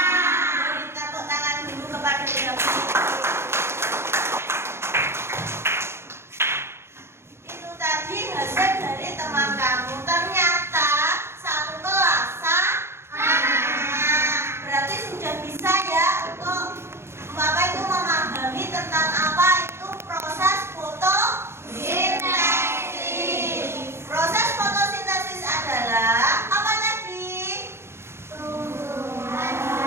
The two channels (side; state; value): left; late; 0.12 ms